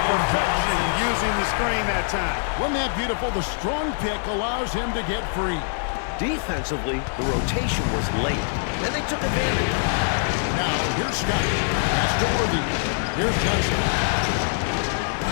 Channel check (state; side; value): silent; right; digital silence